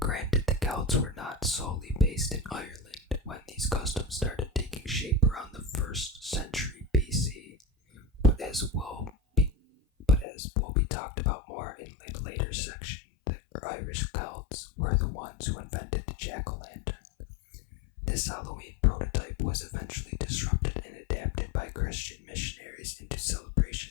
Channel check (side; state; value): right; drops out; at 10.2 s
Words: the Celts were not solely based in Ireland when these customs custom started taking shape around the 1st century BC, but as will be talked about more in a later section, the Irish Celts were the ones who invented the jack-o'-lantern. This Halloween prototype was eventually disrupted and adapted by Christian missionaries into